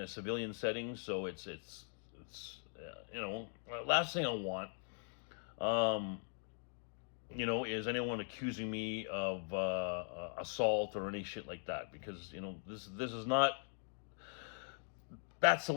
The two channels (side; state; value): right; silent; 50 dB below the other